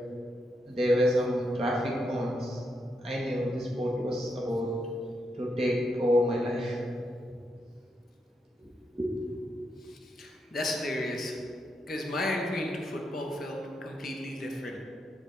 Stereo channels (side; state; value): both; normal; correlation 0.82